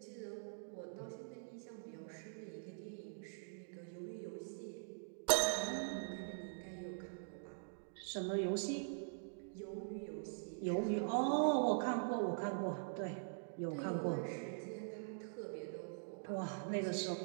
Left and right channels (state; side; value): silent; left; digital silence